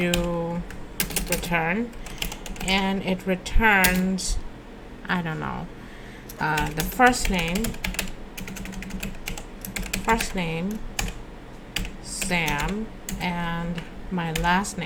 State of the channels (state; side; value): identical; both; correlation 1.00